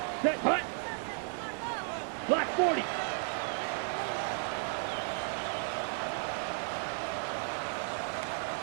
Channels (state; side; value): silent; left; 55 dB below the other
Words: Set. Hut. Black 40.